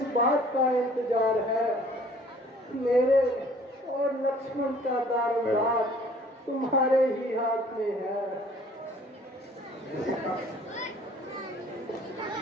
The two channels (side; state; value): both; normal; correlation 0.54